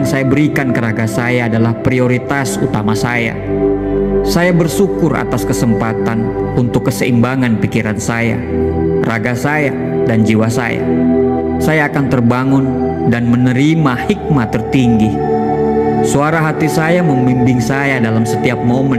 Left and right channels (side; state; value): both; identical; correlation 1.00